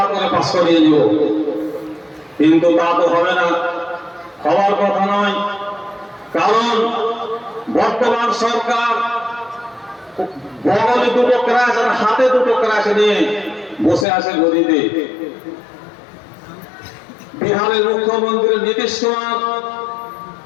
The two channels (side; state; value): right; drops out; at 14.1 s